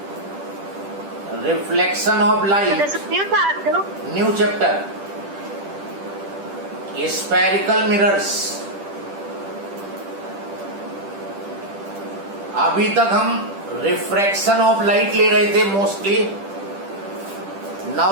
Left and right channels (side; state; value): left; late; 10 ms